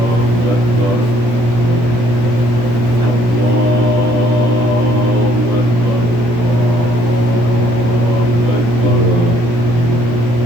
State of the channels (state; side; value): late; left; 17 ms